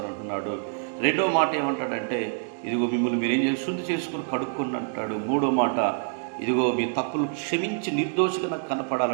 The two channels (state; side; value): silent; left; digital silence